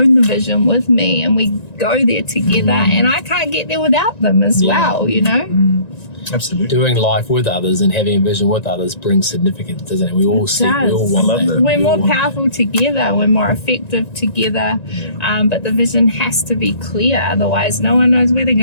the vision with me, and we go there together, and I can't get there without them as well, you know? Absolutely. Doing life with others and having a vision with others brings significance, doesn't it? We all want that. We're more powerful together. We're more effective together. But the vision has to be clear. Otherwise, no one knows where they're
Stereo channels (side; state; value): right; late; 1.9 ms